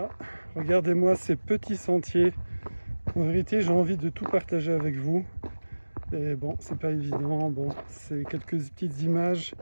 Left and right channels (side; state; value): both; inverted; correlation -1.00